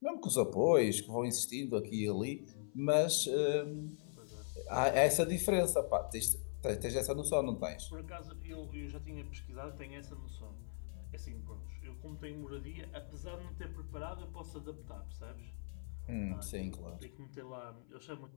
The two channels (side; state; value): right; silent; 51 dB below the other